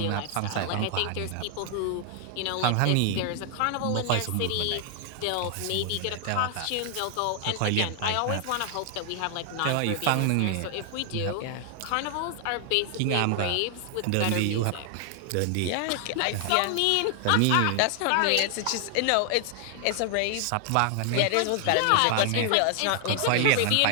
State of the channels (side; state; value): both; different; correlation 0.00